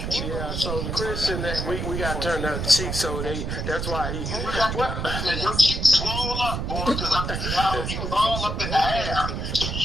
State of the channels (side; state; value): right; noise; rumble, 3 dB below the sound